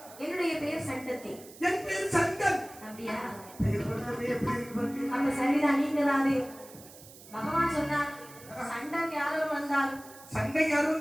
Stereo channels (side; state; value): right; noise; hiss, 19 dB below the sound